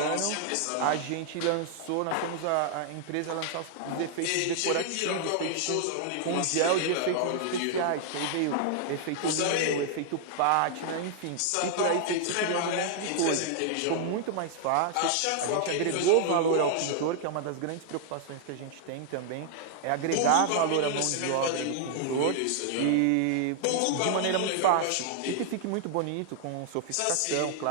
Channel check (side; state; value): both; different; correlation -0.01